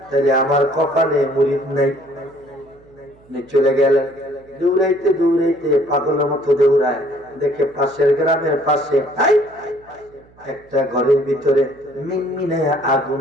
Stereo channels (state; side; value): noise; right; hum, 28 dB below the sound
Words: তাহলে আমার কপালে মুরিদ নাই। চলে গেলেন, দৌড়াইতে দৌড়াইতে পাগলের মতো দৌড়ায়, দেখে পাশের গ্রামের পাশে একটা ঘরের ভিতরে মিনমিনে আগুন